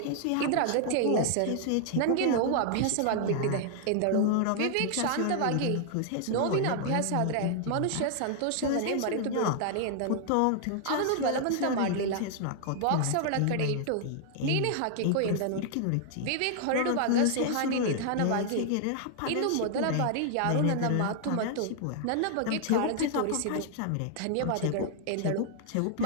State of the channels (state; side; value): different; both; correlation 0.00